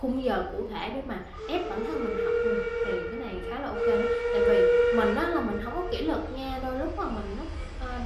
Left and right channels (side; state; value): both; identical; correlation 1.00